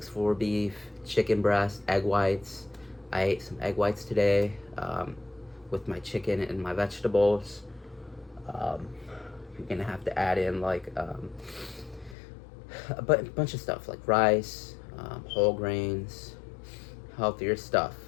beef, chicken breast, egg whites. I ate some egg whites today with my chicken and my vegetables. You're gonna have to add in like a bunch of stuff like rice, whole grains, healthier stuff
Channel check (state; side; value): drops out; right; at 12.2 s